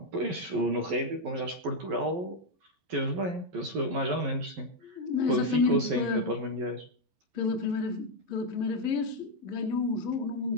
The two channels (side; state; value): left; late; 11 ms